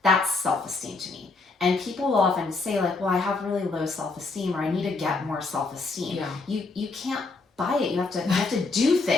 That's self-esteem to me. And people will often say like, well, I have really low self-esteem, or I need to get more self-esteem. You can't buy it. You have to do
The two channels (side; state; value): right; quieter; 3.7 dB